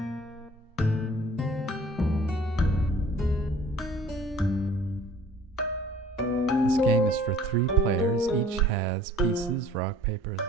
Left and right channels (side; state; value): both; normal; correlation 0.51